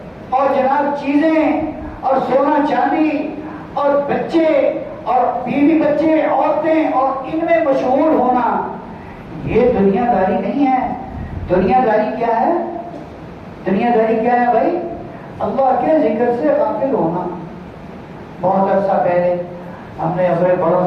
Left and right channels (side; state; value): both; identical; correlation 1.00